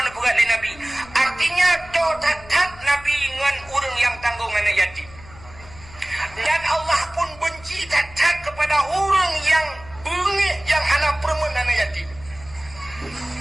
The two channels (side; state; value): left; noise; hum, 20 dB below the sound